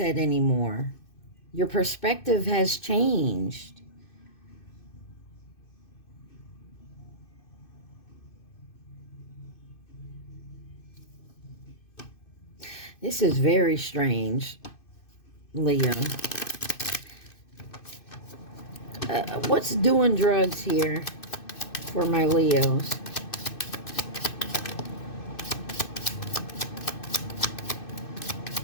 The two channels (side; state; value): right; late; 2.6 ms